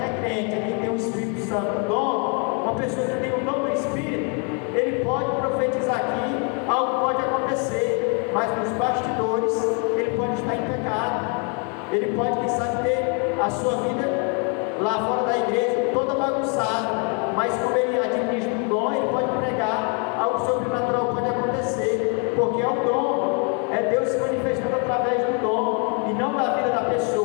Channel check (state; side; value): quieter; right; 37.4 dB